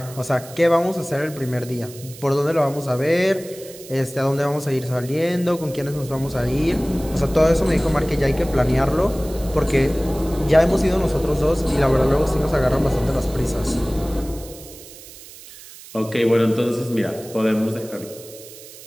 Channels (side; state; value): right; noise; hiss, 18 dB below the sound